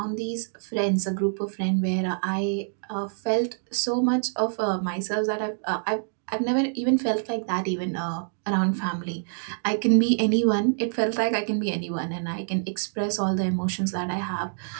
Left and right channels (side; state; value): left; silent; digital silence